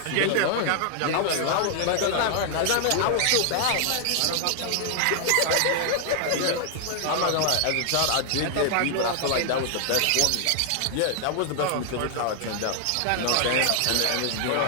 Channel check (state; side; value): different; both; correlation 0.00